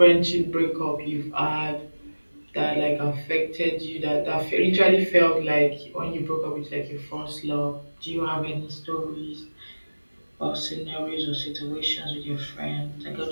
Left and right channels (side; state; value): both; inverted; correlation -1.00